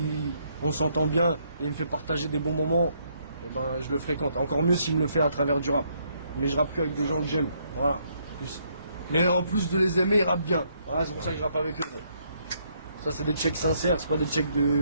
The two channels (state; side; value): inverted; both; correlation -0.71